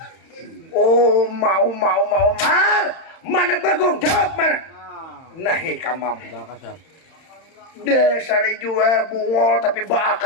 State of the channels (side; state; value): right; late; 31 ms